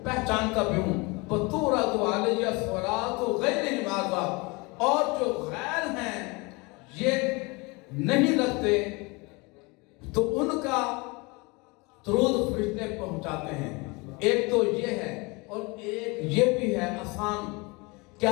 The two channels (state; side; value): quieter; right; 26.8 dB